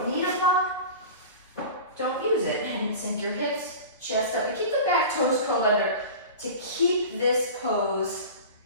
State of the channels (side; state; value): both; inverted; correlation -0.34